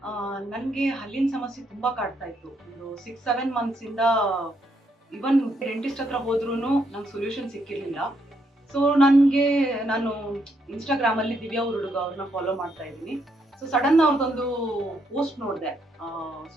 ನನಗೆ ಹಲ್ಲಿನ ಸಮಸ್ಯೆ ತುಂಬಾ ಕಾಡ್ತಾ ಇತ್ತು. ಒಂದು 6-7 ಮಂತ್ಸಿಂದ ಈವನ್ ಡೆಂಟಿಸ್ಟ್ ಹತ್ರ ಹೋದ್ರೂನು ನಂಗೆ ಸೊಲ್ಯೂಷನ್ ಸಿಕ್ಕಿರ್ಲಿಲ್ಲ. ಸೊ ನಾನು ಇನ್‌ಸ್ಟಾಗ್ರಾಮಲ್ಲಿ ದಿವ್ಯಾ ಹುಡುಗ ಅವ್ರನ್ನ ಫಾಲೋ ಮಾಡ್ತಾ ಇದ್ದೀನಿ. ಸೊ ಸಡನ್ ಅವ್ರದ್ದೊಂದು ಪೋಸ್ಟ್ ನೋಡಿದೆ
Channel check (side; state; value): both; normal; correlation 0.75